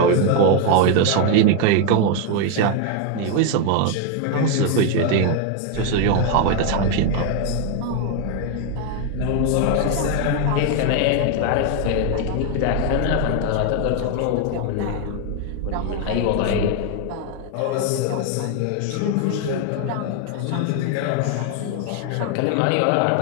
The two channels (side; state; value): both; different; correlation 0.01